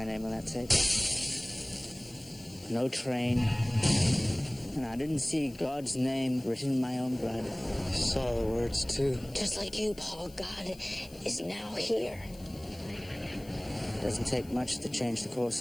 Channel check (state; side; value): noise; left; hiss, 22 dB below the sound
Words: name on that tape. No train. And I didn't see God's name written in my own blood. I saw the words, too. Just like you, Paul, God is now here. It doesn't take much to change the